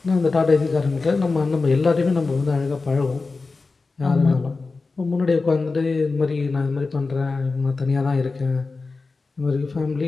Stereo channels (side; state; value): right; quieter; 4.0 dB